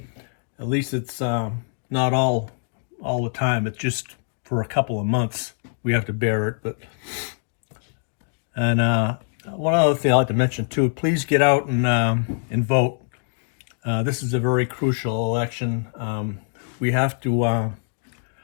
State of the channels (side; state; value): right; silent; digital silence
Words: at least it's not all the time. It's just for a couple of months we have to bear it. And one other thing I'd like to mention too: please get out and vote. This is a very crucial election. We have to